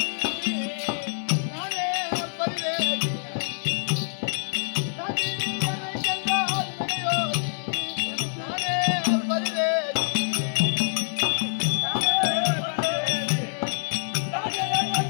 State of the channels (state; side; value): silent; right; digital silence